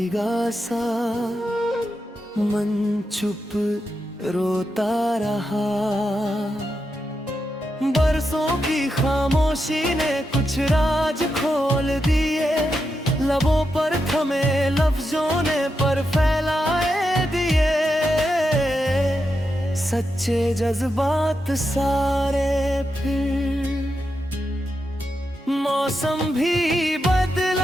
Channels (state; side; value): normal; both; correlation 0.86